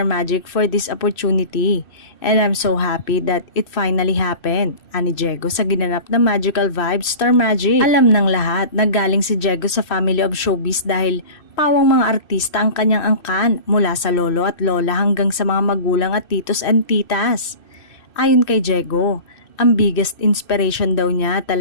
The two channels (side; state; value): right; late; 2.6 ms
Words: Magic, for this opportunity. And I'm so happy that it finally happened. Ani Diego sa ginanap na Magical Vibes Star Magic. Alam ng lahat na galing si Diego sa family of showbiz dahil pawang mga artista ang kanyang angkan mula sa lolo at lola hanggang sa mga magulang at titos and titas. Ayon kay Diego, ang biggest inspiration daw niya